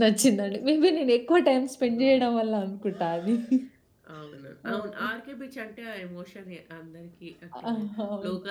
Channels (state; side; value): identical; both; correlation 1.00